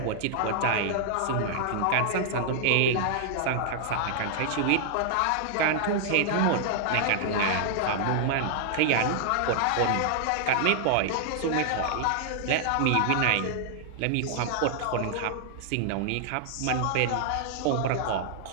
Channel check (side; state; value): both; different; correlation -0.01